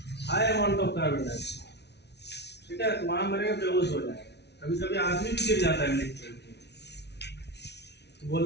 high amount of carbon dioxide, ठीक है, तो वहां मरेगा, बेहोश हो जाएगा. कभी कभी आदमी भी गिर जाता है इमली के पेड़ पे,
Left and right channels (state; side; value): late; right; 0.50 ms